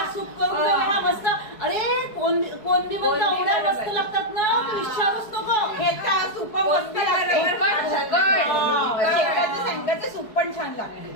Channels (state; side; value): late; right; 4.7 ms